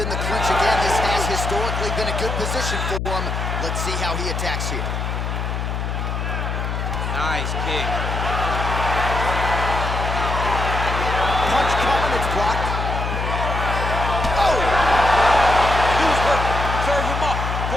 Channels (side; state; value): left; noise; hum, 2 dB below the sound